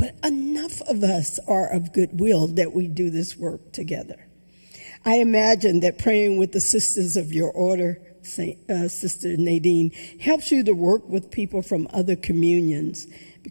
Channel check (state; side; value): inverted; both; correlation -1.00